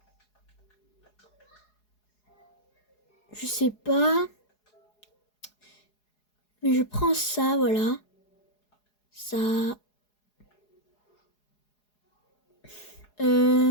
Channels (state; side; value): late; right; 4.8 ms